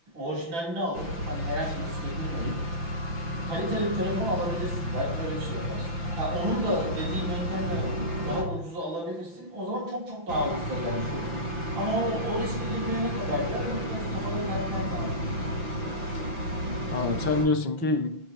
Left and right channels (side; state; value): left; late; 5.9 ms